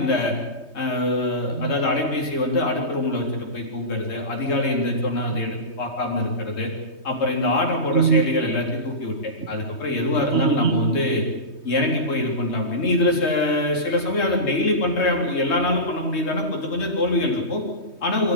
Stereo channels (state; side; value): late; right; 3.2 ms